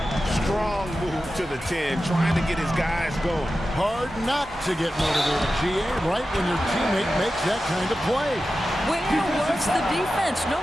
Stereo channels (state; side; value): normal; both; correlation 0.93